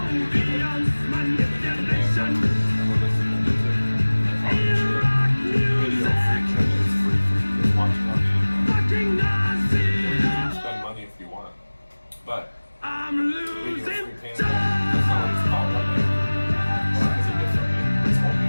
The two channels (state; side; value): inverted; both; correlation -1.00